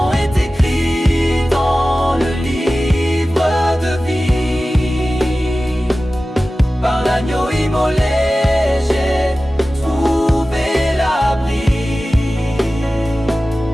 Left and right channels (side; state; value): both; normal; correlation 0.96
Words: est écrit dans le livre de vie. Par l'agneau immolé, j'ai trouvé l'abri.